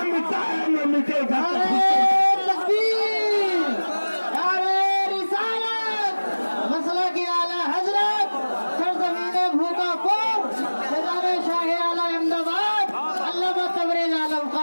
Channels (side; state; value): both; inverted; correlation -1.00